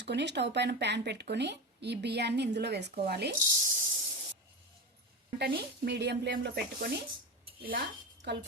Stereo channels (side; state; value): both; normal; correlation 0.22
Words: స్టవ్ పైన ప్యాన్ పెట్టుకొని ఈ బియ్యాన్ని ఇందులో వేసుకోవాలి. మంటని మీడియం ఫ్లేమ్లో పెట్టుకొని ఇలా